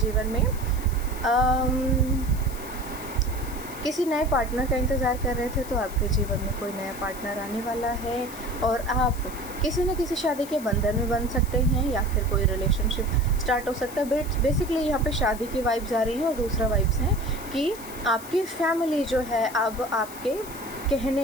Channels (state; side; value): noise; left; hiss, 15 dB below the sound